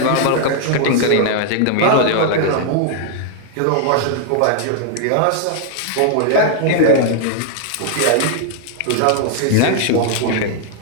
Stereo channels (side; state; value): both; different; correlation 0.00